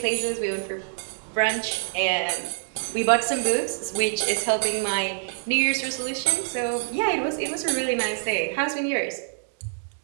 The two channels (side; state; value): left; silent; digital silence